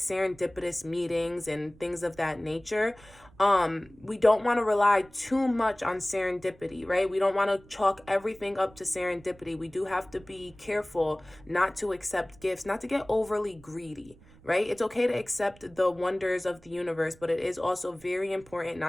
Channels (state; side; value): noise; right; rumble, 25 dB below the sound